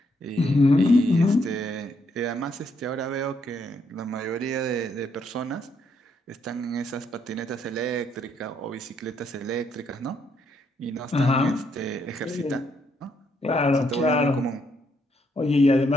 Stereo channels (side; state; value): both; normal; correlation 0.74